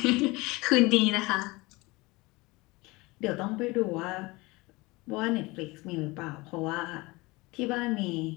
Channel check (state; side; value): quieter; right; 23.1 dB